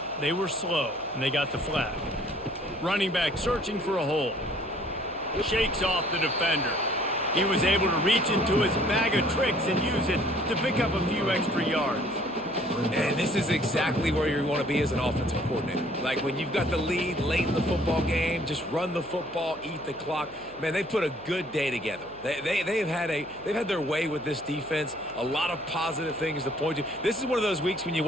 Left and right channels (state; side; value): noise; left; hum, 24 dB below the sound